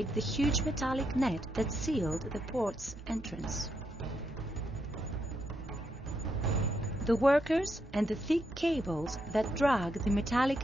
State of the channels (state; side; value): normal; both; correlation 0.80